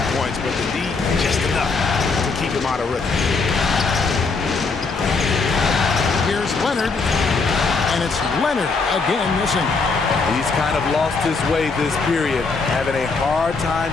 points, but the D, just enough to keep him out of rhythm. Here's Leonard, and it's Leonard again missing. He's kind of lost his way this period, having a hard time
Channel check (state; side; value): quieter; right; 4.3 dB